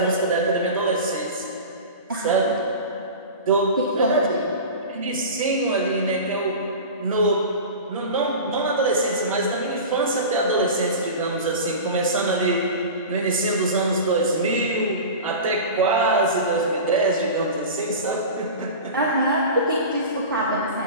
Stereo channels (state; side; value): inverted; both; correlation -0.32